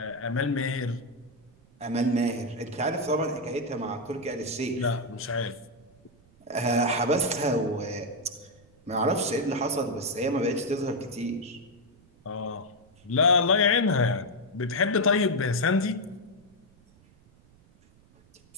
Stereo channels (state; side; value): noise; right; rumble, 29 dB below the sound